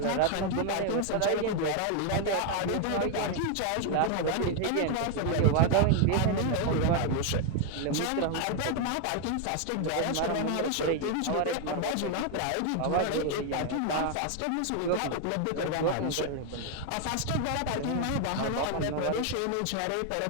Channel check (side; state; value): both; different; correlation 0.00